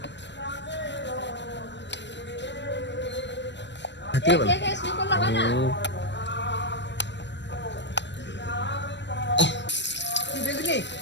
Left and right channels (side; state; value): right; late; 0.52 ms